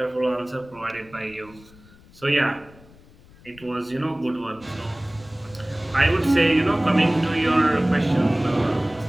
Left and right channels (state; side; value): noise; left; rumble, 24 dB below the sound